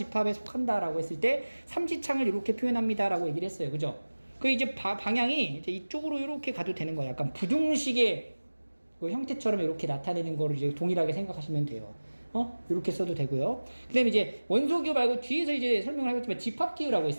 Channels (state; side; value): inverted; both; correlation -1.00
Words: 속한다라고 했을 때 삼지창을 이렇게 표현합니다라고 얘기를 했어요. 그죠? 그 이제 방향이 이제 이쪽으로 이렇게 가도 되는 거예요. 약간 부등식의 그 형태처럼 이렇게 나타내는 거를 이제 동일하게 생각하시면 돼요. 이렇게 써도 되고요. 그 다음에 이제 원소기호 말고 뒤에서 이제 설명을 하겠지만 집합기호라고